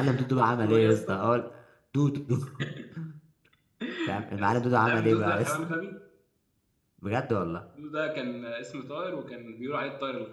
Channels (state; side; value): identical; both; correlation 1.00